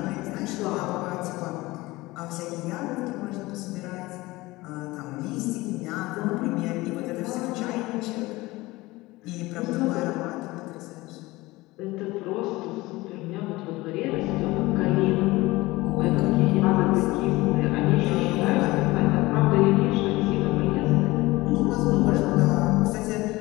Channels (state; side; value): quieter; right; 20.3 dB